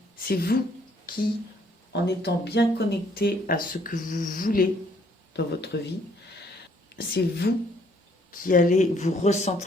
C'est vous qui, en étant bien connecté à ce que vous voulez dans votre vie, c'est vous qui allez vous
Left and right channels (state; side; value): normal; both; correlation 0.65